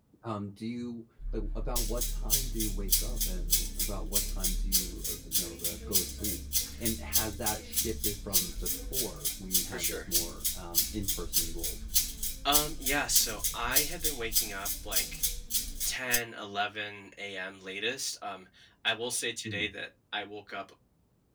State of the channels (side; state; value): both; identical; correlation 1.00